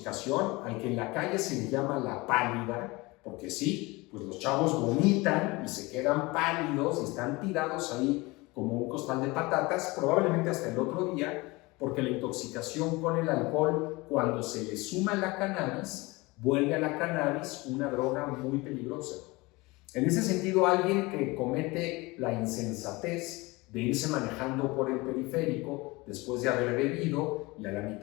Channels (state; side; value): quieter; right; 23.3 dB